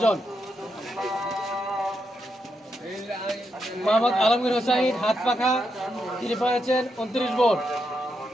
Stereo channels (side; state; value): both; normal; correlation 0.83